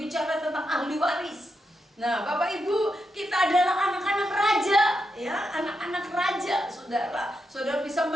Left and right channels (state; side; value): normal; both; correlation 0.84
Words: tentang ahli waris. Nah, Bapak Ibu, kita adalah anak-anak raja, ya, anak-anak raja, saudara. Saudara bisa